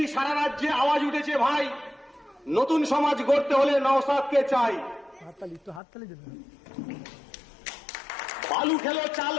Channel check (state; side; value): drops out; right; at 5.8 s